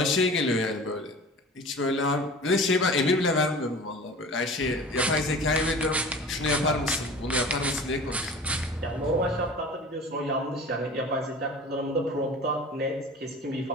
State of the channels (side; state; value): both; normal; correlation 0.39